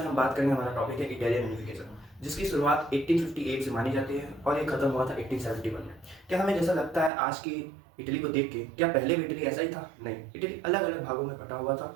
हम बात करेंगे। हमारा टॉपिक है इटालियन यूनिफिकेशन, जिसकी शुरुआत 1858 से मानी जाती है और ये खत्म हुआ था 1871 में। क्या हमें जैसा लगता है आज की इटली को देख के, क्या पहले भी इटली ऐसा ही था? नहीं, इटली अलग अलग भागों में बटा हुआ था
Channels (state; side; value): drops out; left; at 7.1 s